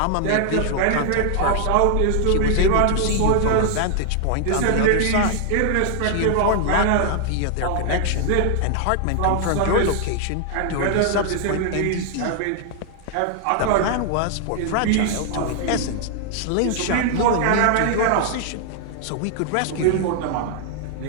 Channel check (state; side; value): different; both; correlation 0.00